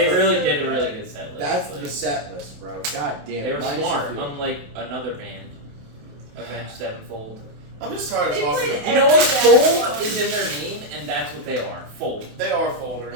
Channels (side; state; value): left; late; 28 ms